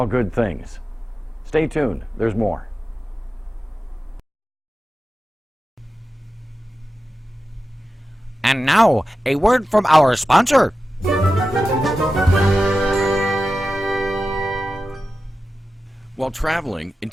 good things. Stay tuned, there's more. And now, a word from our sponsor. While traveling and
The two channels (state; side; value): normal; both; correlation 0.93